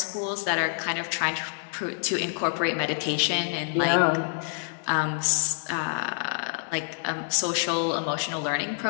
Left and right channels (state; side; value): silent; right; 60 dB below the other